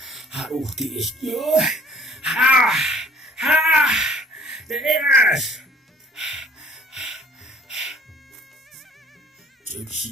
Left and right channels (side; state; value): both; normal; correlation 0.54